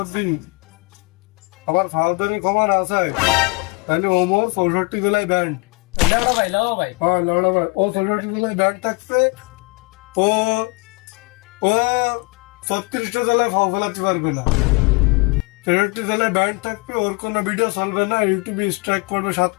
আমার ফাউদারি ক্ষমা না চায়, তাহলে ওমর 64 জেলায় ব্যান্ড। হ্যাঁ লড়া ভাই, ও 64 জেলায় ব্যান্ড থাকছে। ও 36টা জেলায় ফাও ফেলাতে পারবে না, 63 জেলায় ব্যান্ড থাকবে, ওর কোনো ভিডিও চলবে না, ইউটিউবে স্ট্রাইক পড়বে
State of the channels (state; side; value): quieter; right; 29.8 dB